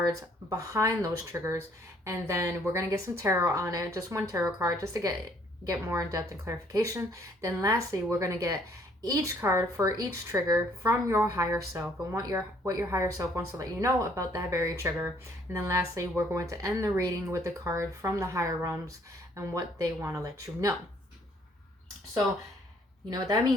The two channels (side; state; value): both; normal; correlation 0.63